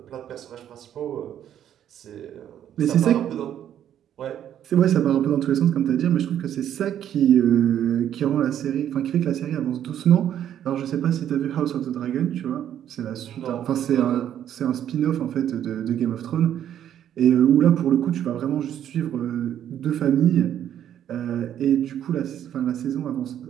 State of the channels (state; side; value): quieter; left; 10.4 dB